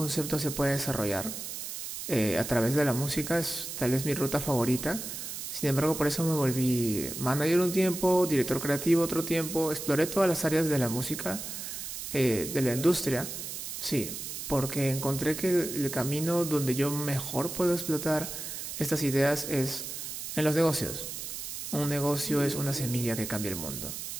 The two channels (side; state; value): right; noise; hiss, 7 dB below the sound